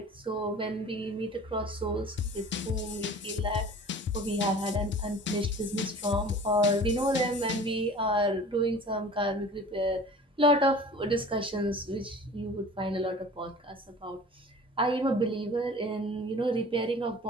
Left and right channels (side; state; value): both; normal; correlation 0.43